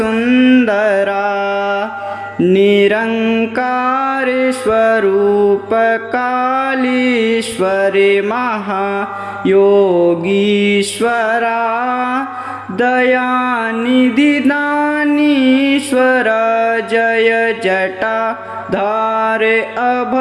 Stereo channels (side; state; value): both; identical; correlation 1.00